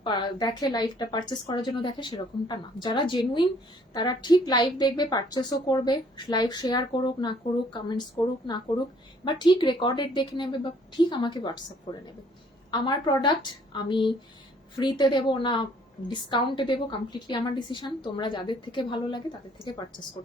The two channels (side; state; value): both; normal; correlation 0.61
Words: দেখে, লাইভটা পারচেস করার জন্য দেখে, সেরকমটা না। যারা জেনুইন তারা ঠিক লাইভ দেখবে, পারচেসও করবে, লাইভ শেয়ার করুক না করুক, কমেন্টস করুক না করুক, বা ঠিক রেকর্ডেড দেখে নেবে বা ঠিক আমাকে হোয়াটসঅ্যাপ করে নেবে। আমার প্রোডাক্ট আমি ফ্রিতে দেবো না ডিসকাউন্টে দেবো কমপ্লিটলি আমার ডিসিশন, তোমরা যাদের থেকে ভালো লাগে তাদের থেকে পারচেস